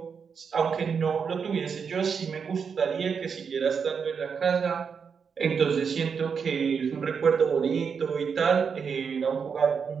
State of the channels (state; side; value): quieter; left; 6.2 dB